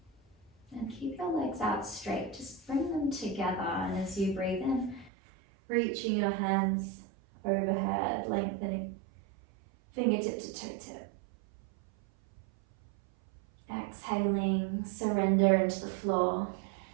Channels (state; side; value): drops out; left; at 5.1 s